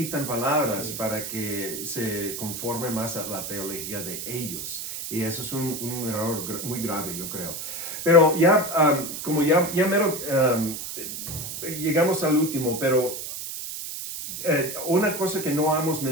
palabras para que se conforme más a la teología de ellos. Y eso es un error muy grave, yo creo. Pero ya, como ya mero, llegamos al último, pero una cosa que no hemos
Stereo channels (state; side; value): noise; right; hiss, 7 dB below the sound